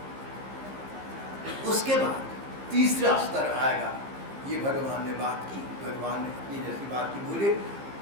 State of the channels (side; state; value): left; late; 15 ms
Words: उसके बाद तीसरा स्तर आएगा। ये भगवान ने बात की, भगवान ने अपनी जैसी बात की बोले।